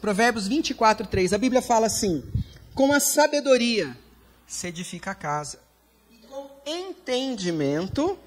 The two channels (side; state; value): both; identical; correlation 1.00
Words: Provérbios 24:3, a Bíblia fala assim: com a sabedoria se edifica a casa, e com entendimento